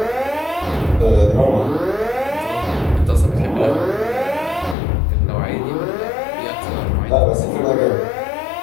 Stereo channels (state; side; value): drops out; right; at 4.8 s